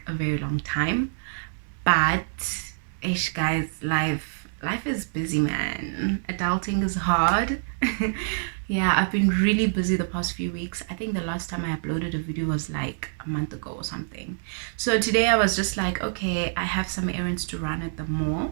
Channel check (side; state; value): left; silent; 61 dB below the other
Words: a very long time, but ish guys, life is busy, man. Adulting is hard. Yeah, I've been really busy the past few weeks. I think the last time I uploaded a video was like a month ago or something. So today I was just like, okay, I have some errands to run at the mall.